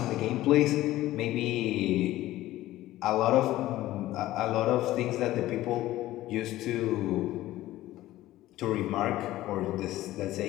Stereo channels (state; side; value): quieter; right; 15.6 dB